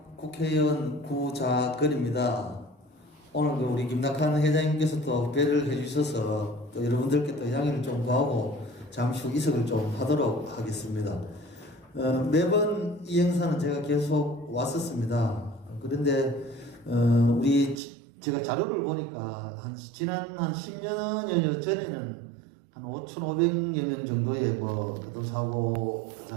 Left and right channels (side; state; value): left; drops out; at 17.8 s